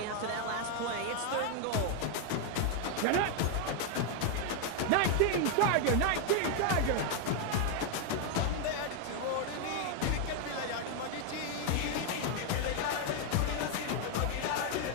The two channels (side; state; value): both; different; correlation 0.00